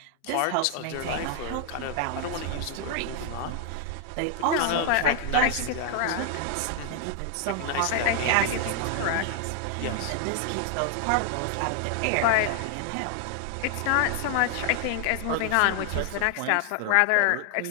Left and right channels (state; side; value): different; both; correlation 0.00